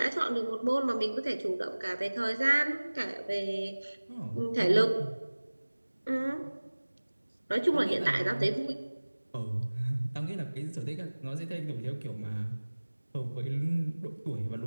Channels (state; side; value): inverted; both; correlation -1.00